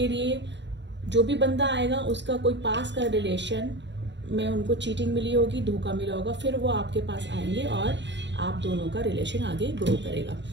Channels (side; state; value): left; late; 0.52 ms